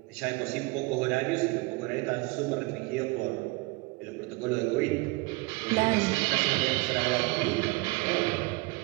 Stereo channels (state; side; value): quieter; left; 24.5 dB